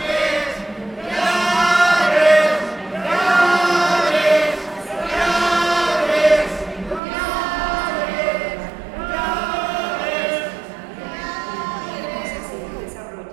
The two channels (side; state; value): left; drops out; at 7.0 s